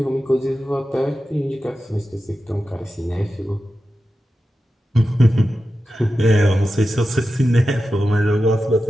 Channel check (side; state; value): both; normal; correlation 0.92